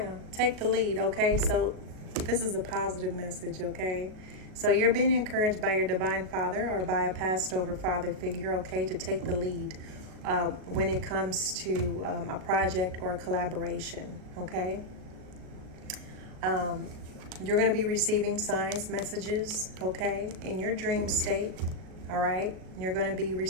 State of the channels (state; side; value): late; left; 38 ms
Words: take the lead, okay? So this is a positive message, okay? So you're being encouraged by your divine father or by a passed over father figure, okay, to take the lead when it comes to a project or a collaboration, okay? You're going to be receiving signs, messages, okay, in your dream state, all right? You're going to be